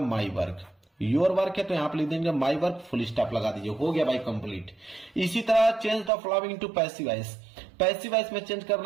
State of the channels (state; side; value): drops out; left; at 6.1 s